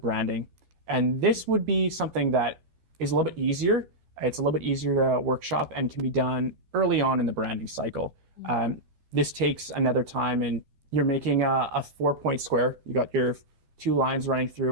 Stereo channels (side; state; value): left; late; 12 ms